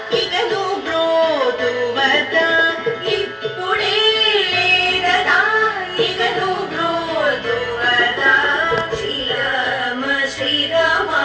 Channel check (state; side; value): identical; both; correlation 1.00